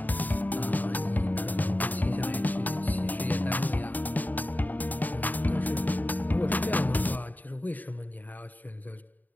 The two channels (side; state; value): right; late; 0.084 ms